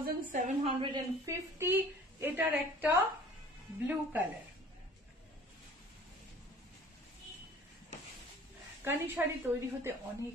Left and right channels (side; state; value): both; normal; correlation 0.49